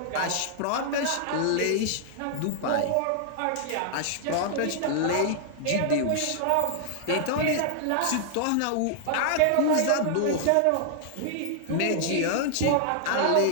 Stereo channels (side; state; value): both; different; correlation -0.01